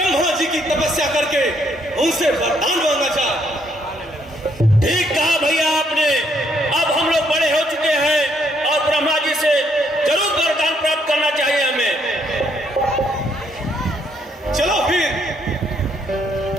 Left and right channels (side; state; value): both; normal; correlation 0.71